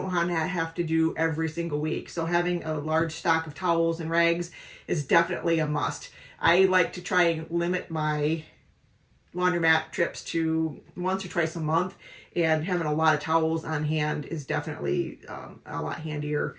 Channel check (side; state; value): both; identical; correlation 1.00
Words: want to have to do every single week. So having a large stock of towels and rags is definitely a must. I like to try and limit my laundromat trips to once or twice a month. and having a lot of towels on hand is definitely a lot handier.